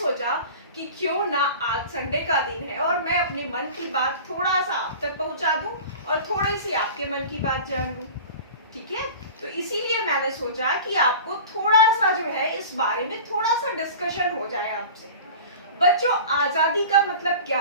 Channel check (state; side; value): inverted; both; correlation -0.37